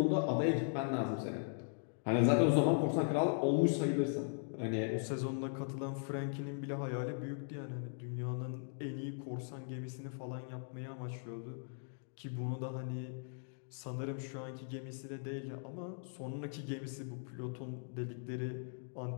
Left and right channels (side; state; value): right; silent; digital silence